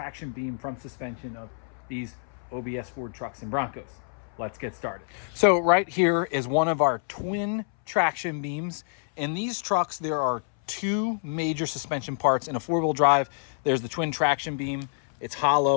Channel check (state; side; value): silent; right; 60 dB below the other